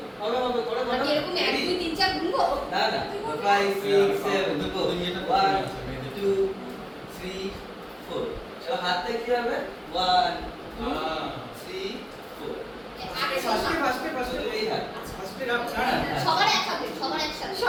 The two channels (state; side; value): identical; both; correlation 1.00